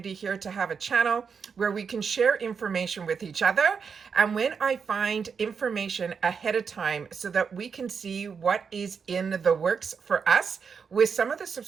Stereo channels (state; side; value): quieter; left; 6.1 dB